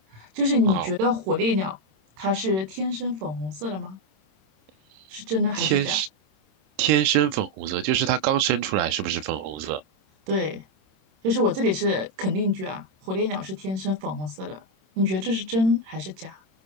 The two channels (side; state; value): left; late; 27 ms